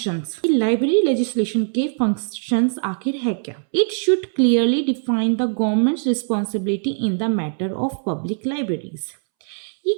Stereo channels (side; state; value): left; silent; 65 dB below the other